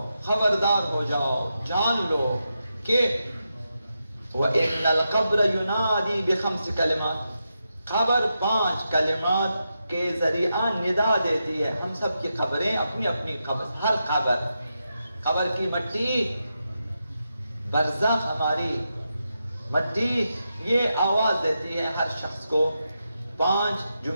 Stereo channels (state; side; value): inverted; both; correlation -0.87